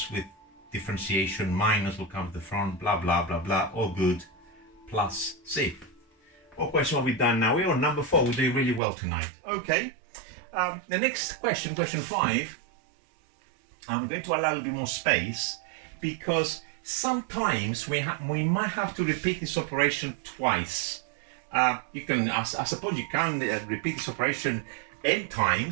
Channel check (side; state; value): left; drops out; at 8.8 s